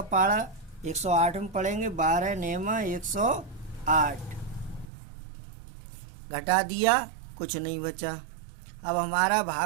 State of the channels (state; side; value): drops out; left; at 4.9 s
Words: पारा 108 में पढ़ेंगे, 12 नेमा 108, घटा दिया, कुछ नहीं बचा। अब हमारा